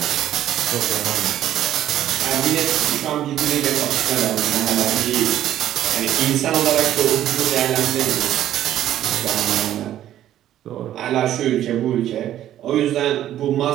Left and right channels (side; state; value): left; quieter; 12.1 dB